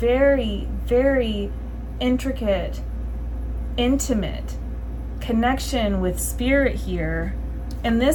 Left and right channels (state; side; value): identical; both; correlation 1.00